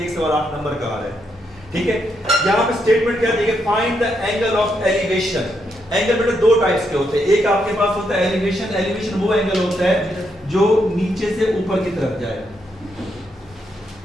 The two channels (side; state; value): both; normal; correlation 0.79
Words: एक सवाल 8 नंबर का आ रहा है, ठीक है। यहाँ पे स्टेटमेंट क्या दी है, find the angle of elevation. Angle बेटा दो टाइप्स के होते हैं, एक आपके पास होता है एलिवेशन, एलिवेशन वो एंगल होता है जो नीचे से ऊपर की तरफ जाए,